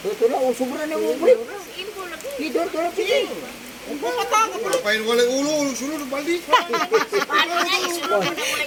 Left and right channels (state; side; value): identical; both; correlation 1.00